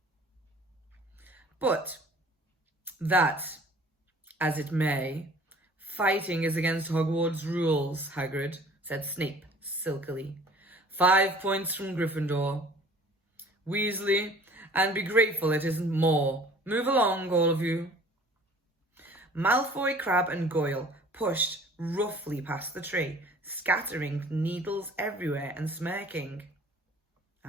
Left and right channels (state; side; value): normal; both; correlation 0.50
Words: "But that, as it may, fighting is against Hogwarts rules, Hagrid," said Snape silkily. 5 points from Gryffindor. Weasley, and be grateful it isn't more. Move along, all of you." Malfoy, Crabbe and Goyle pushed roughly past the tree, scattering needles everywhere and smirking.